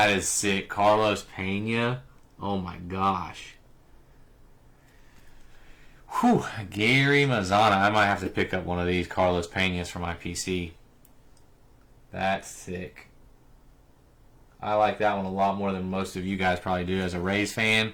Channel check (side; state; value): both; identical; correlation 1.00